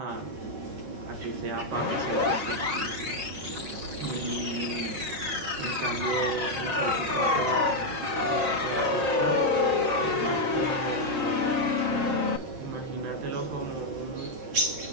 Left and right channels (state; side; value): late; left; 13 ms